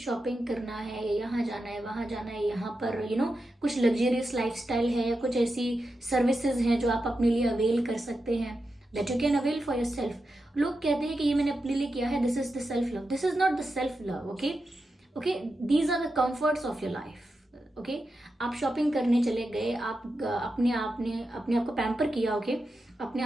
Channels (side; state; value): both; normal; correlation 0.89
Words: करना है, यहाँ जाना है, वहाँ जाना है, यहाँ पर कुछ लग्जरियस लाइफस्टाइल है या कुछ ऐसी सर्विसेज हैं जो आप अपने लिए अवेल कर सकते हैं, that you can avail for your self. लोग कहते हैं कि ये मैंने अपने लिए किया है, this is the self love. This is not the self love. Okay, okay, these are the comforts of your life. Okay, आप शॉपिंग करने चले गए, आप अपने आप को पैम्पर किया। ओके, अपने